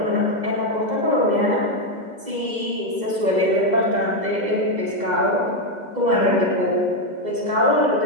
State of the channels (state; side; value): late; left; 2.0 ms